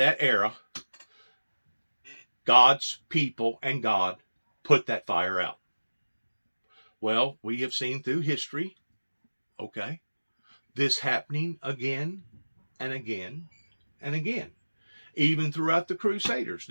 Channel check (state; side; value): inverted; both; correlation -1.00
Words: era. God's people and God put that fire out. Well, we have seen through history, okay, this happening again and again and again. Even throughout the Crusaders